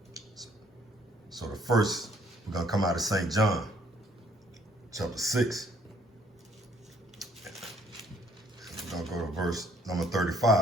So the first, we're going to come out of St. John, chapter 6. We're going to go to verse number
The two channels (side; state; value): both; normal; correlation 0.63